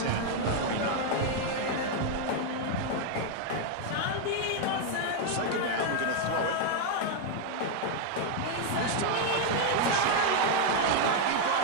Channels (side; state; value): both; different; correlation 0.00